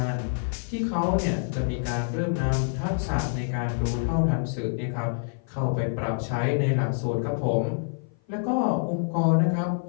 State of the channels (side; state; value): right; silent; 56 dB below the other